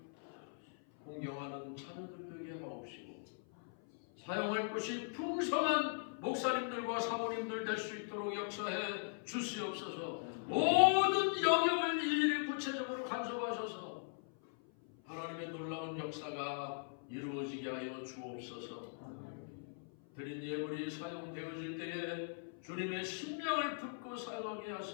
공경하는 자녀들 되게 하옵시고 사용할 것이 풍성한 목사님들과 사모님들 될 수 있도록 역사해 주시옵소서. 모든 영역을 일일이 구체적으로 간섭하셔서 하나님의 놀라운 역사가 이루어지게 하여 주옵소서. 드린 예물이 사용되어질 때에 주님의 신명을 듣고 사용하게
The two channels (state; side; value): silent; right; 51 dB below the other